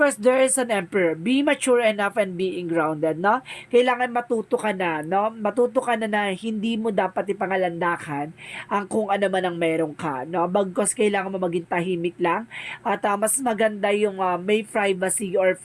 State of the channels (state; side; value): identical; both; correlation 1.00